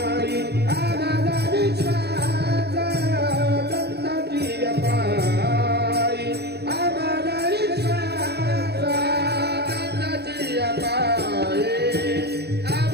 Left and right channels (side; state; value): left; late; 0.47 ms